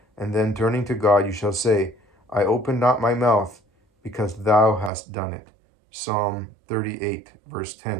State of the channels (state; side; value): drops out; left; at 4.9 s